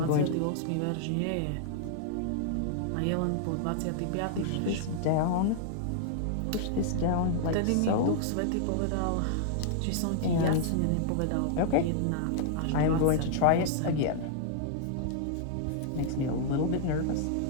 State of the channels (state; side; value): different; both; correlation -0.01